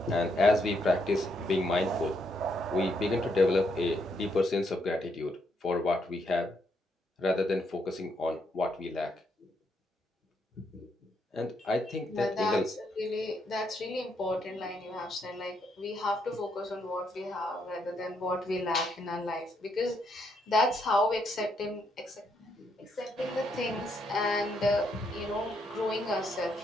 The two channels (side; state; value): both; normal; correlation 0.76